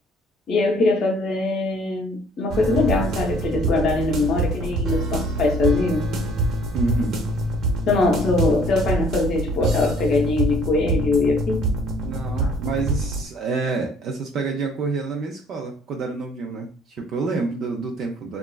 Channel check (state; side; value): normal; both; correlation 0.59